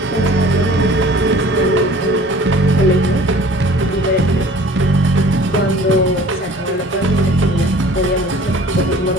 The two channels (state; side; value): normal; both; correlation 0.48